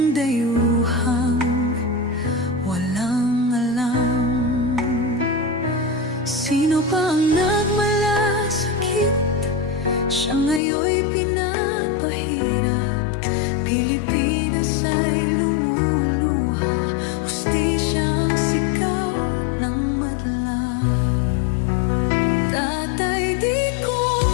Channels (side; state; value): right; drops out; at 10.6 s